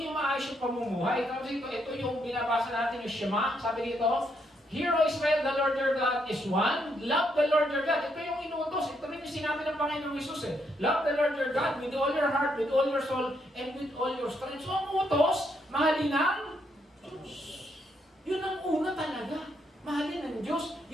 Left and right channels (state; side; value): normal; both; correlation 0.76